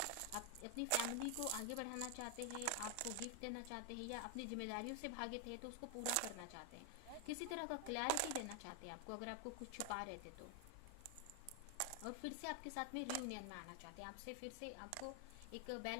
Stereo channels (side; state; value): both; different; correlation 0.00